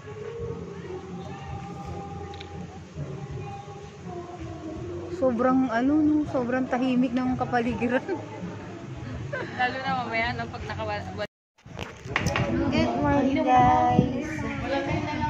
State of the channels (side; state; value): both; identical; correlation 1.00